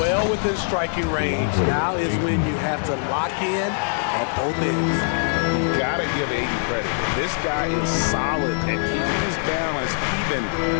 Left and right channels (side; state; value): right; silent; 57 dB below the other